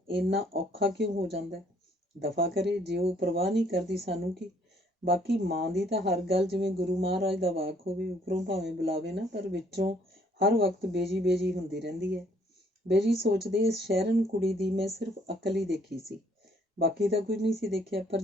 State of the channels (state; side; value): normal; both; correlation 0.64